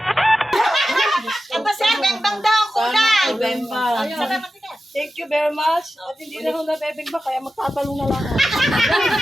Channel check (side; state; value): both; normal; correlation 0.93